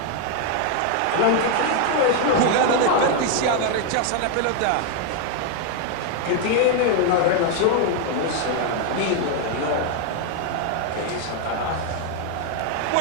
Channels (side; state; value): both; different; correlation 0.01